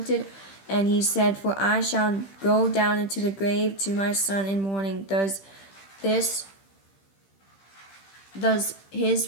And he said, for I shall go down into the grave to my son in mourning. Does his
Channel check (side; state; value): right; late; 15 ms